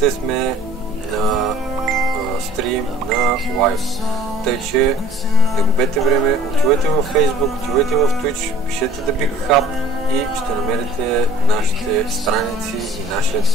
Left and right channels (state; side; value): normal; both; correlation 0.49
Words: сме на стрим на лайв. Тъй, че не губете време, отивайте във Facebook, отивайте в Twitch, пишете The Big Hub и ще намерите нашите страници и